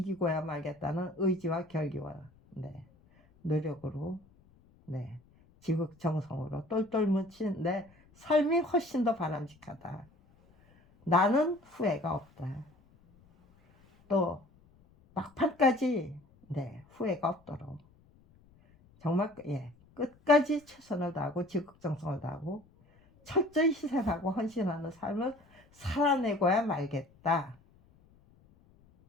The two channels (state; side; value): noise; left; rumble, 29 dB below the sound